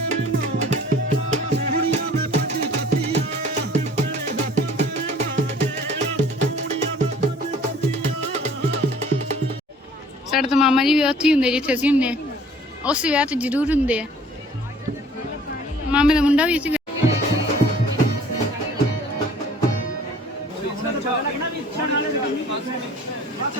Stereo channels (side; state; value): both; normal; correlation 0.51